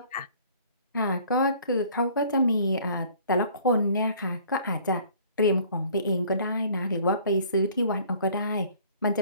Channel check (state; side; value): inverted; both; correlation -0.54